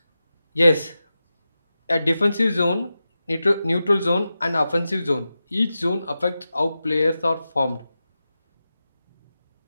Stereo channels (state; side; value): inverted; both; correlation -0.92